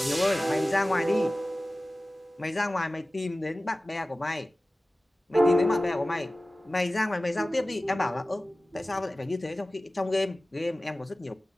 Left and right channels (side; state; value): both; normal; correlation 0.97